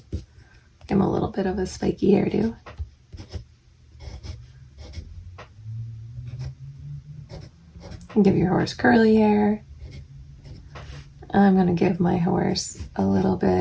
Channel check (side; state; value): both; identical; correlation 1.00